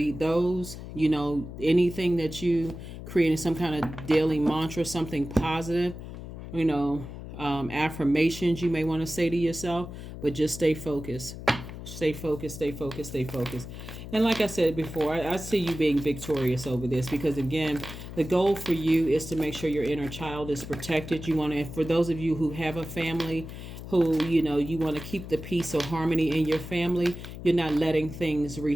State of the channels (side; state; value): left; noise; hum, 11 dB below the sound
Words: those. Anything that you create, some kind of daily mantra, something positive, affirmations you may want to say to yourself, but just stay focused. Stay focused, stay focused, stay focused. And like I said before, I see you being victorious over this, because again, the goal for you is to make sure your inner child is protected. You want to, for those of you who have a family, who, you want to keep the peace or harmony in your family, you're not letting things